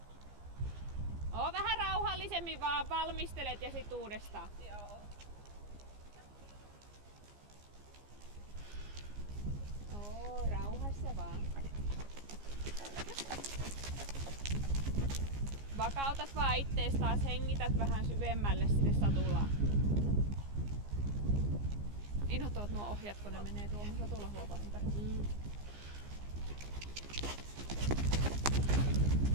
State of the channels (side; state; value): left; late; 15 ms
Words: Oo vähän rauhallisemmin vaan valmistelet ja sit uudestaan. Joo. Oo, rauhassa vaan. Vakautat vaan ittees taas, hengität vähän syvemmälle sinne satulaan. Inhottavat nuo ohjat, kun ne menee tuohon satulahuopaan ympäri.